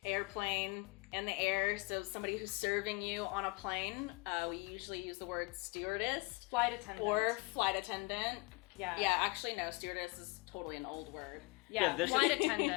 airplane in the air. So somebody who's serving you on a plane. We usually use the word stewardess. Flight attendant. Or flight attendant. Yeah. Yeah, actually no, stewardess is totally an old word. Yeah, flight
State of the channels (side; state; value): right; quieter; 26.2 dB